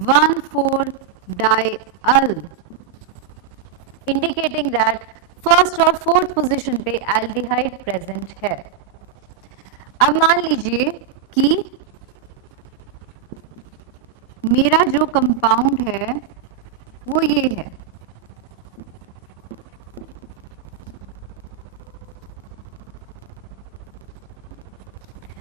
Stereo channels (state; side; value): quieter; left; 8.1 dB